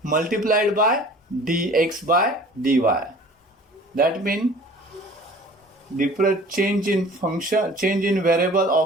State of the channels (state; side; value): normal; both; correlation 0.46